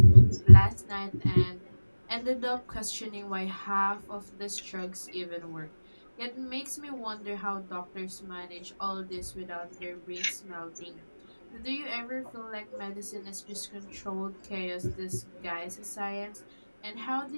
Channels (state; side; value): inverted; both; correlation -1.00